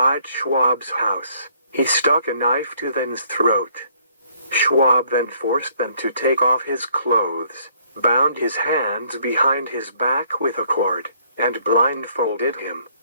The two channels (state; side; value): inverted; both; correlation -0.65